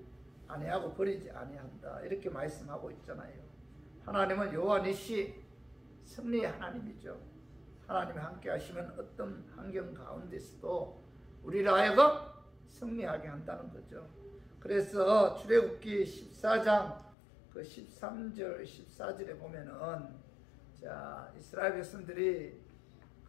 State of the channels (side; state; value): right; drops out; at 17.2 s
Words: 아니하고 버리지 아니한다. 이렇게 말씀하고 있잖아요. 하나님은 여호와 니시 승리의 하나님이죠. 하나님이 함께 하시면 어떤 환경 가운데서도 우리를 하여금 승리하게 한다는 거죠. 그래서 출애굽기 14장 13절 14절에 보면은 자, 이스라엘 백성들이